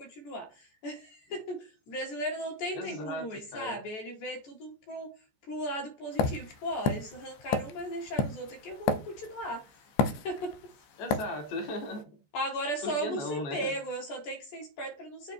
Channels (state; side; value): late; right; 14 ms